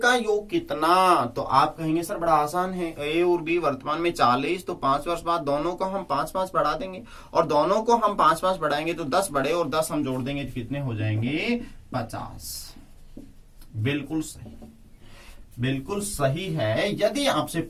योग कितना। तो आप कहेंगे सर बड़ा आसान है, ए और बी वर्तमान में 40, तो 5 वर्ष बाद दोनों को हम 5-5 बढ़ा देंगे, और दोनों को हम 5-5 बढ़ाएंगे तो 10 बढ़े और 10 हम जोड़ देंगे तो कितने हो जाएंगे, 50। बिल्कुल सही, बिल्कुल सही है। यदि आपसे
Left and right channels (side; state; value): both; identical; correlation 1.00